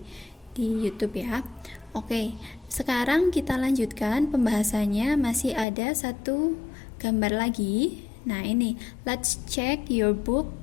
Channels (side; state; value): right; drops out; at 5.7 s